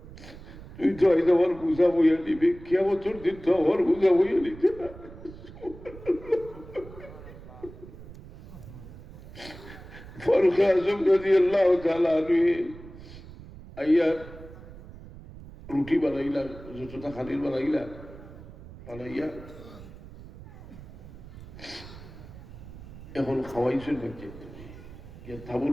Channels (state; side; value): noise; right; rumble, 16 dB below the sound